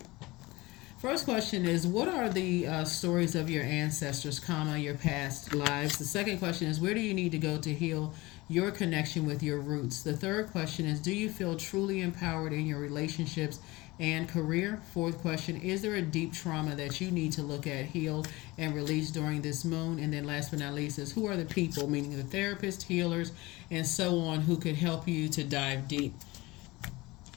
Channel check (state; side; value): quieter; right; 21.4 dB